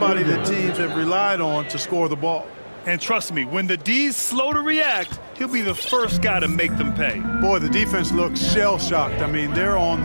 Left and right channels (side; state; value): both; inverted; correlation -1.00